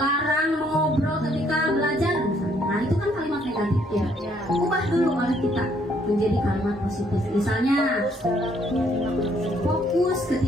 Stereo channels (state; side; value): normal; both; correlation 0.67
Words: mengobrol ketika belajar misalnya. Nah itu kan kalimat negatif ya. Ubah dulu oleh kita menjadi kalimat positif. Misalnya fokus